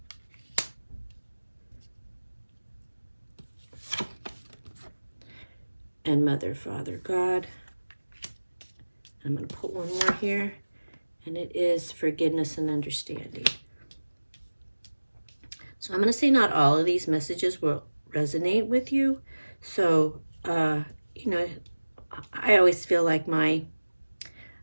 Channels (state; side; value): inverted; both; correlation -1.00